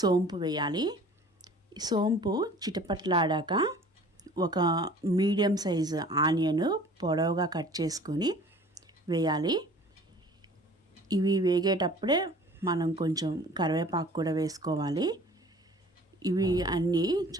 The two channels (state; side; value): normal; both; correlation 0.48